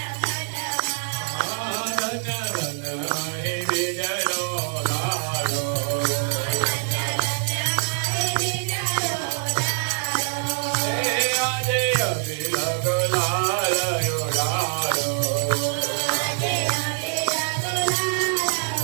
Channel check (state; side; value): silent; left; 62 dB below the other